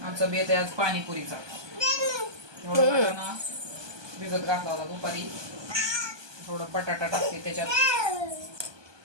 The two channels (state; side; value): late; left; 1.2 ms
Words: आमचा बेत आहे आज पाणीपुरीचा. एवढा ना भिजत घातला होता दुपारी. थोडा बटाटा टाकते त्याच्यात.